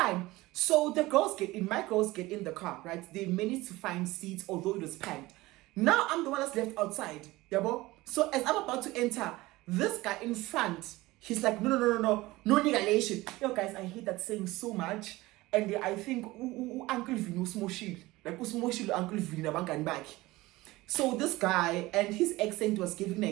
So the girls get in, my girls get in the car, right? They managed to find seats, although it was packed. Now I'm the one that's left outside. Yeah, so as I'm about to enter, this guy in front, he's like, no negation. Yo guys, I hate that saying so much. And I think Uncle Vino Smoshil, like Usmoshil Uncle Vino Bankan back. So this guy, and his accent was giving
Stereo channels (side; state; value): left; quieter; 19.5 dB